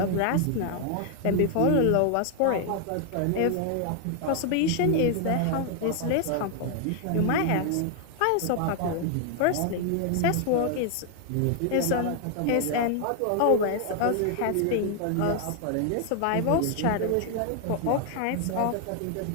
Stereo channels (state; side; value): different; both; correlation 0.00